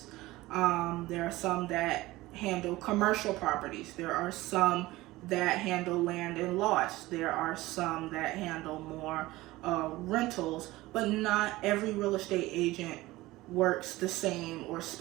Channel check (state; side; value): quieter; left; 18.6 dB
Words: There are some that handle commercial properties. There are some that handle land and lots. There are some that handle more rentals, but not every real estate agent works the same or